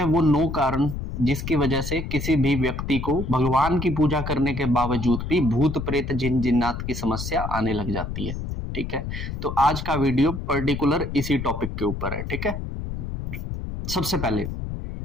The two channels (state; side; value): noise; left; rumble, 6 dB below the sound